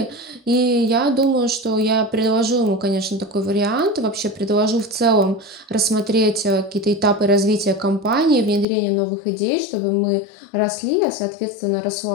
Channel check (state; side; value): drops out; right; at 8.7 s